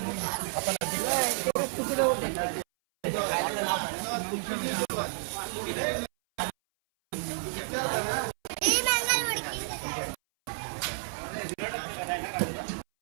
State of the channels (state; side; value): silent; left; 57 dB below the other